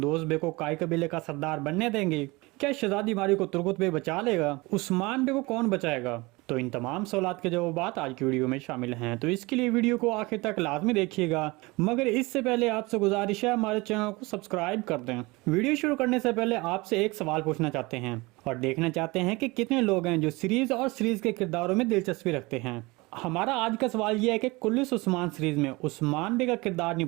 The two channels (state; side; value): quieter; left; 23.5 dB